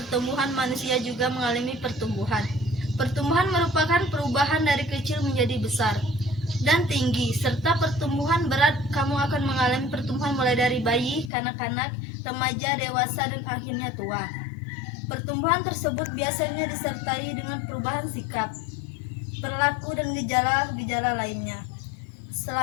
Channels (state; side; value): drops out; right; at 11.3 s